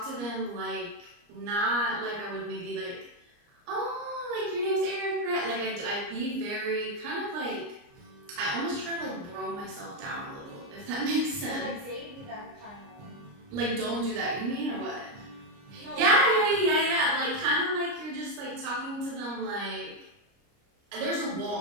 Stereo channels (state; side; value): late; left; 29 ms